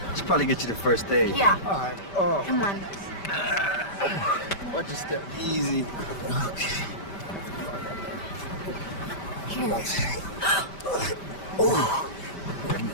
Should probably get you the first aid. Yeah. All right. Oh. Come on. Watch your step easy. Okay. Oh.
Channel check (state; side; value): late; right; 5.1 ms